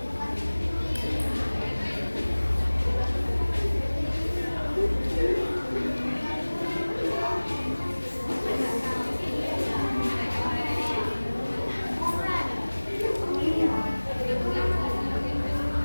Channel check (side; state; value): both; inverted; correlation -1.00